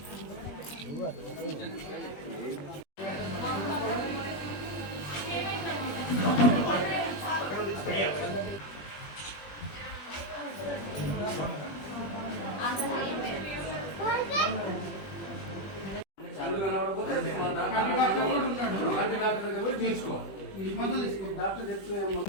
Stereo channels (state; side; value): late; right; 20 ms